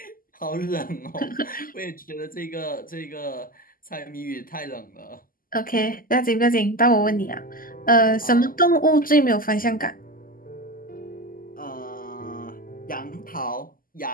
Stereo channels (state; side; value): late; right; 0.41 ms